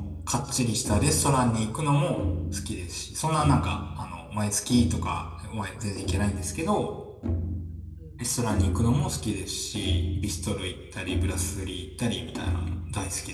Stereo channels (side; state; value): both; identical; correlation 1.00